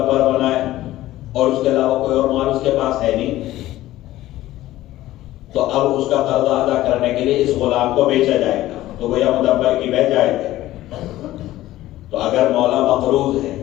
بنائے اور اس کے علاوہ کوئی اور مال اس کے پاس ہے نہیں، تو اب اس کا قرضہ ادا کرنے کے لیے اس غلام کو بیچا جائے گا، تو گویا مدبر کی بیع جائز ہے۔ تو اگر مولا مقروض ہے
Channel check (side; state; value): right; quieter; 15.4 dB